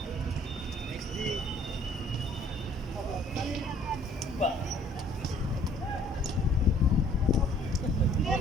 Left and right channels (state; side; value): normal; both; correlation 0.58